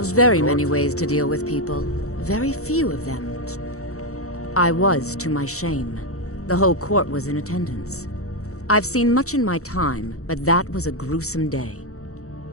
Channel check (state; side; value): late; right; 0.65 ms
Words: very with many court? ways to deal with people. Very few of them. I was, to my shame. The whole court was in attendance. I've seen much in my time, but that was a gruesome day.